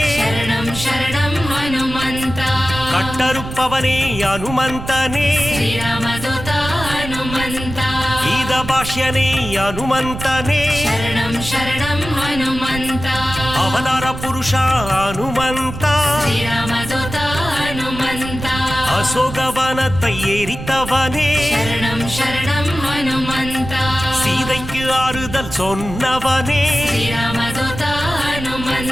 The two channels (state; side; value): noise; right; rumble, 9 dB below the sound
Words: சரணம் சரணம் ஹனுமந்தா கட்டறுப்பவனே அனுமந்தனே ஸ்ரீராமதூதா ஹனுமந்தா கீத பாஷ்யனே அனுமந்தனே சரணம் சரணம் ஹனுமந்தா அவதார புருஷா அனுமந்தா ஸ்ரீராமதூதா ஹனுமந்தா அசோகவனத்தை எரித்தவனே சரணம் சரணம் ஹனுமந்தா சீதைக்கு ஆறுதல் சொன்னவனே ஸ்ரீராமதூதா